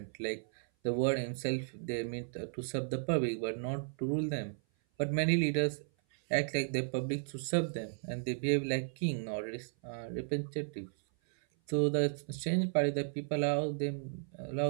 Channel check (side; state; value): left; silent; 55 dB below the other